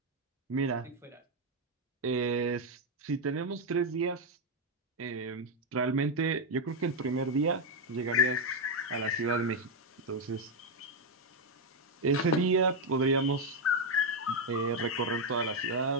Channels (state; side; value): normal; both; correlation 0.04